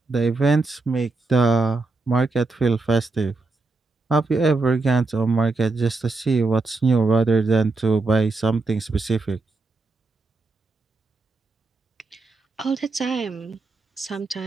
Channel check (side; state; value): left; quieter; 3.6 dB